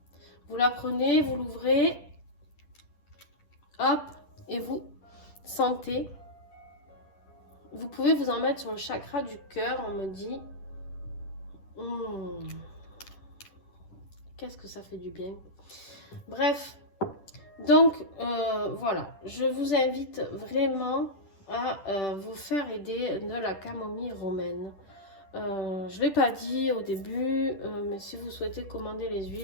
Vous la prenez, vous l'ouvrez, hop, et vous sentez. Vous pouvez vous en mettre sur le chakra du cœur, on me dit. Qu'est-ce que ça fait du bien. Bref, donc voilà, je vous invite vraiment à vous faire aider de la camomille romaine. Je ne l'ai pas dit au début, mais si vous souhaitez commander les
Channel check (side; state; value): right; late; 10 ms